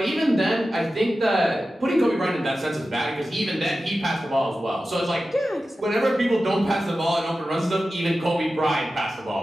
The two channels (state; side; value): normal; both; correlation 0.93